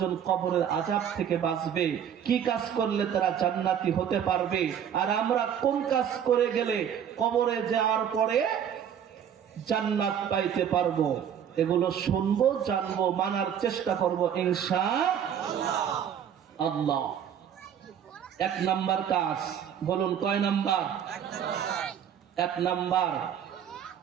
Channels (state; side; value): quieter; left; 8.8 dB